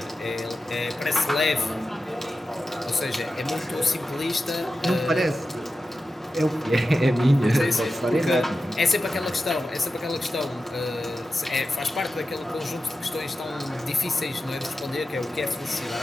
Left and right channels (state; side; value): normal; both; correlation 0.92